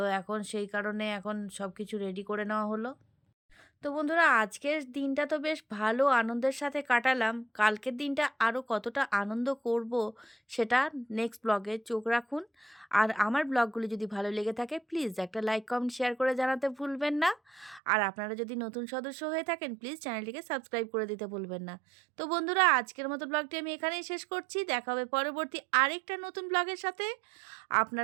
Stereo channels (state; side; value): drops out; left; at 17.8 s